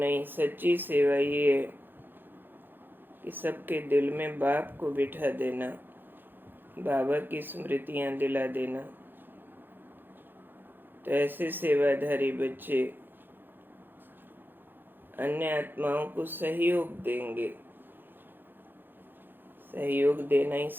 सच्ची सेवा ये है कि सबके दिल में बाप को बिठा देना, बाबा की स्मृतियां दिला देना। तो ऐसे सेवाधारी बच्चे अन्य आत्माओं को सहयोग देंगे। सहयोग देना ही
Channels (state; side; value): late; left; 0.096 ms